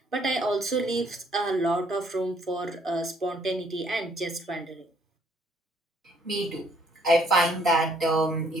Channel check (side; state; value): both; normal; correlation 0.65